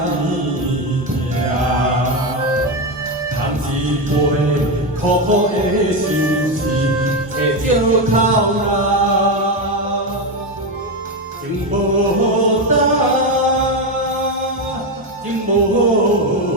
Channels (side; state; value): both; normal; correlation 0.11